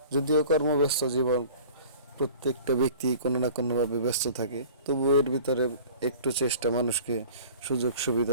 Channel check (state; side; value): inverted; both; correlation -0.44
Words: যদিও কর্মব্যস্ত জীবন, প্রত্যেকটা ব্যক্তি কোনো না কোনোভাবে ব্যস্ত থাকে, তবু এর ভিতরে একটু চেষ্টা মানুষকে সুযোগ